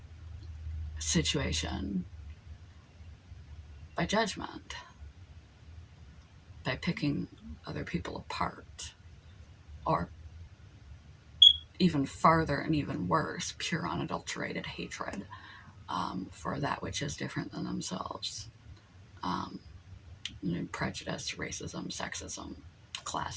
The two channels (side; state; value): both; identical; correlation 1.00